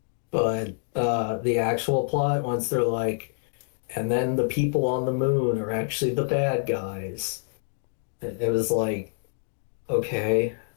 But the actual plot, once they're like, and then the people on the moon are actually the bad guys. It was like, okay.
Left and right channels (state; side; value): silent; right; 60 dB below the other